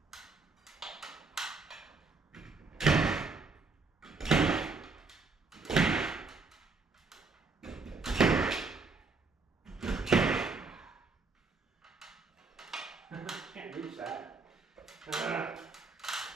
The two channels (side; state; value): left; quieter; 4.1 dB